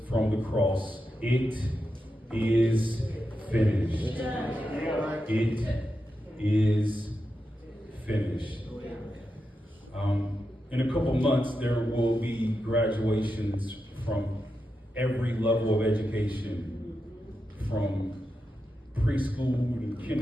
from the cross: it is finished. It is finished. In a couple months, there will be graduations from every level of education, from preschool and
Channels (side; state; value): both; normal; correlation 0.88